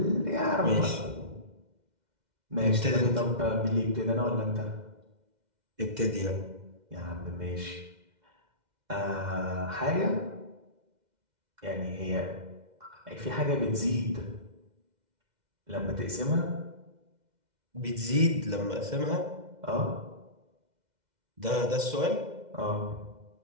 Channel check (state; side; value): late; left; 2.1 ms